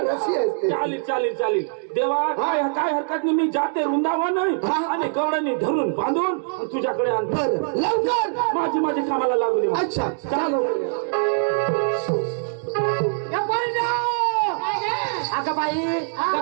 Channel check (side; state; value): left; silent; digital silence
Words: रस्सी असते चालेल चालेल चालेल देवा काय काय हरकत नाही मी जाते वृंदावन आणि गवळणी धरून बांधून तुझ्याकडे आणतो बरं लवकर माझी कामाला लागू दे अच्छा चालू अगं बाई